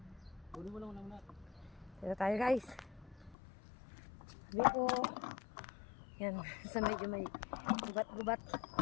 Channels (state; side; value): drops out; right; at 3.4 s